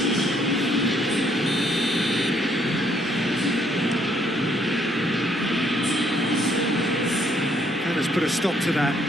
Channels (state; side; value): normal; both; correlation 0.68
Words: put a stop to that.